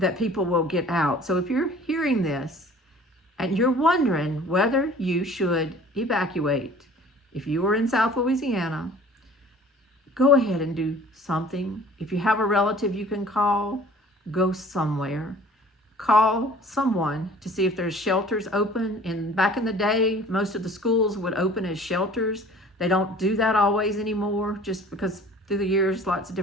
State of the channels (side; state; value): both; normal; correlation 0.48